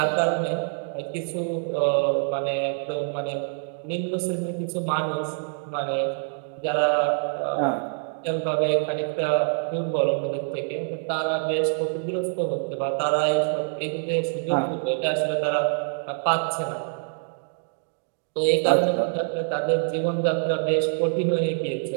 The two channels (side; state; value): left; silent; 61 dB below the other